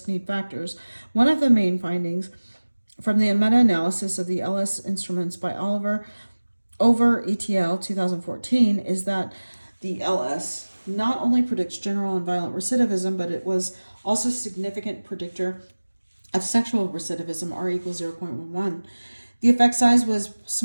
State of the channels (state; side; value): inverted; both; correlation -1.00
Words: need factors. One of the main findings from the meta-analysis of the LS instruments by Oliver over ETL 2014 is that the LS not only predicts general and violent recidivism, but it was also a significant predictor of sexual recidivism, R equals 0.11. The effect size was